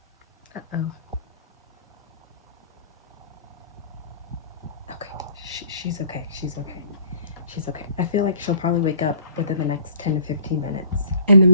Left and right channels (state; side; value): inverted; both; correlation -0.54